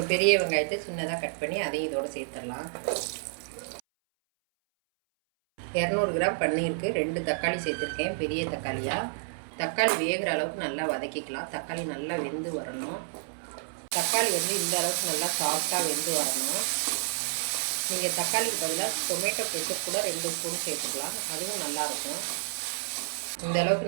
பெரிய வெங்காயத்தை சின்னதாக கட் பண்ணி அதையும் இதோடு சேர்த்துடலாம். 200 கிராம் பன்னீருக்கு 2 தக்காளி சேர்த்துருக்கேன், பெரிய தக்காளியாக. தக்காளி வேகிற அளவுக்கு நல்லா வதக்கிக்கலாம். தக்காளி நல்லா வெந்து வரணும். தக்காளி வந்து இந்த அளவுக்கு நல்லா சாஃப்டாக வெந்து வரணும். நீங்கள் தக்காளிக்கு பதிலாக டொமேட்டோ கெச்சப் கூட 2 ஸ்பூன் சேர்த்துக்கலாம், அதுவும் நல்லாயிருக்கும். இந்த அளவுக்கு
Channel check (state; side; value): silent; left; 58 dB below the other